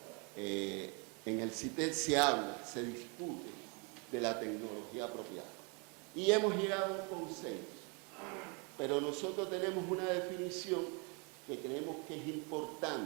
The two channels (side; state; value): left; quieter; 33.5 dB